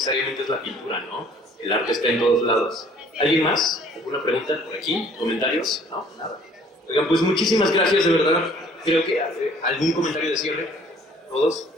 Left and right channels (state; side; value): normal; both; correlation 0.56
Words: es la pintura, ¿no? El arte está en todos lados. ¿Alguien más? ¿Alguna pregunta por aquí? ¿Comentarios? No, nada. Oigan, pues muchísimas gracias, de verdad. Creo que algún comentario de cierre, todos.